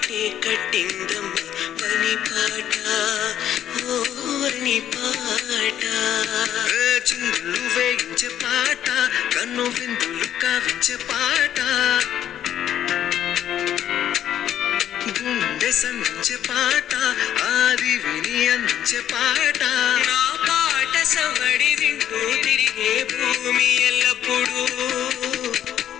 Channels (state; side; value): quieter; right; 10.7 dB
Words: కట్టిందమ్మ పని పాట ఓ వని పాట చిందులు వేయించే పాట కన్ను విందులు కావించే పాట గుండె సంధించే పాట ఆది విని అందించే పాట నా పాట సవడి వింటూ తిరిగే భూమి ఎల్లప్పుడూ